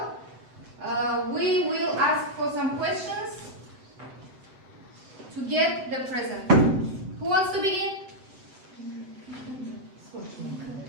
we will ask for some questions to get the present. Who wants to begin?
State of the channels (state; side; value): late; left; 7.9 ms